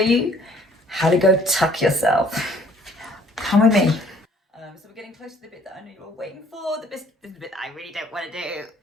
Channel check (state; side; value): normal; both; correlation 0.59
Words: you how to go tuck yourself. Come with me. So we're getting close to the bit that I know you're all waiting for, the bit that I really don't want to do.